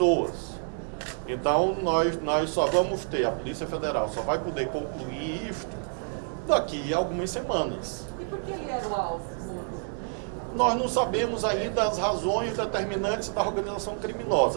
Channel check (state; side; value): silent; left; 59 dB below the other